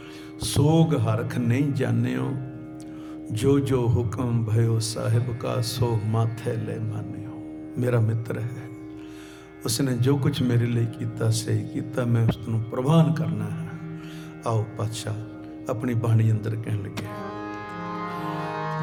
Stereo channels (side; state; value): both; identical; correlation 1.00